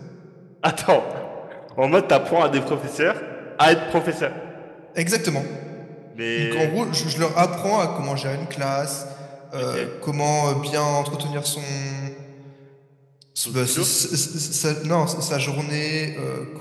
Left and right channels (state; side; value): identical; both; correlation 1.00